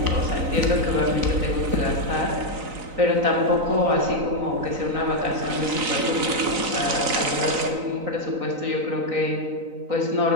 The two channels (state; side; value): late; left; 3.9 ms